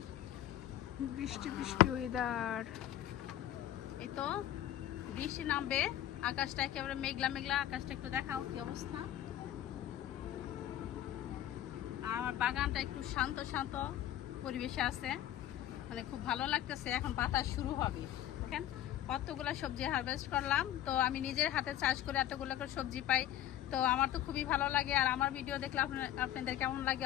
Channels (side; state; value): right; quieter; 12.3 dB